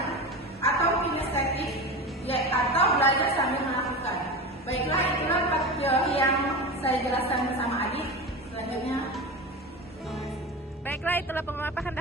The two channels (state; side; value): normal; both; correlation 0.26